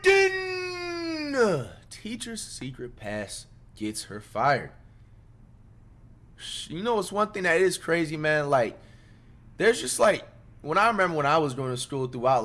Teacher's secret pass gets her fired. You know what's one thing that is crazy, man? Like, there's just like, when I remember when I was going to school throughout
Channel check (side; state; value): both; identical; correlation 1.00